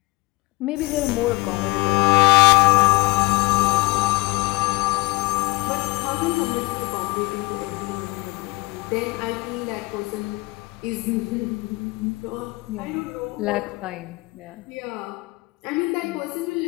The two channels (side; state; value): right; quieter; 24.8 dB